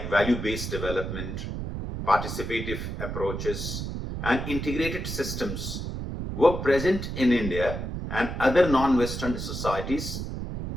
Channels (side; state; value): right; noise; rumble, 5 dB below the sound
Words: value-based development, participative approaches, and integrated systems were present in India and other non-Western societies